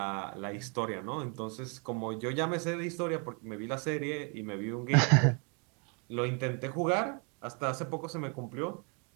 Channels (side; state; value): left; quieter; 35.7 dB